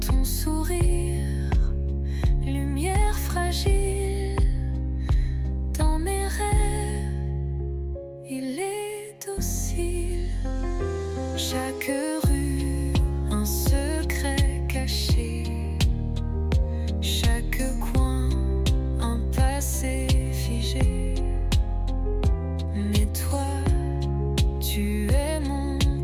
Ton sourire, lumière fragile. Dans mes rêves, il est docile. Chaque rue, un secret caché. Chaque coin, un passé figé. Mais toi, tu es mon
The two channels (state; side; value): identical; both; correlation 1.00